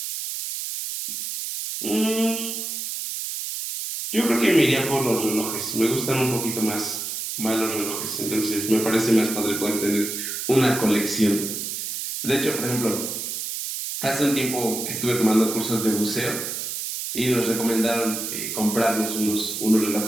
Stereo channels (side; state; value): right; noise; hiss, 4 dB below the sound